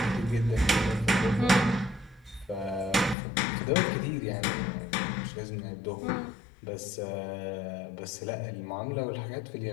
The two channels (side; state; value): right; drops out; at 3.2 s